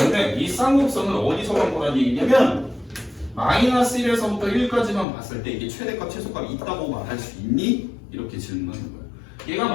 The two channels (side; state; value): right; drops out; at 5.1 s